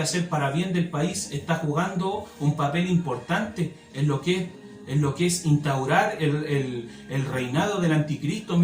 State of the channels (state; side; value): identical; both; correlation 1.00